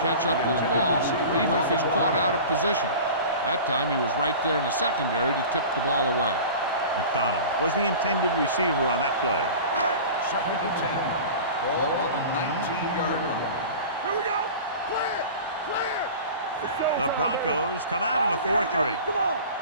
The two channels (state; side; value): inverted; both; correlation -0.37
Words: catch up to the ball even if he's caught out of position. That time he was right there in the secondary to tip the ball away. McDonald was the intended receiver on that play. 2nd and 10. Ball on the 19-yard line. Here we go. Clear. The Broncos come out in a 4-3. Come on.